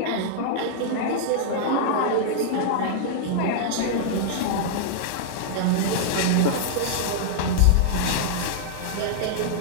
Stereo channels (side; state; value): both; different; correlation -0.02